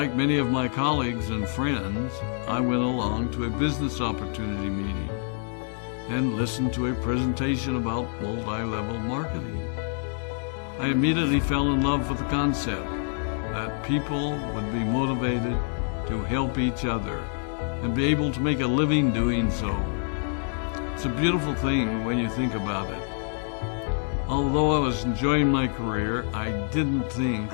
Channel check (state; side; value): silent; right; 59 dB below the other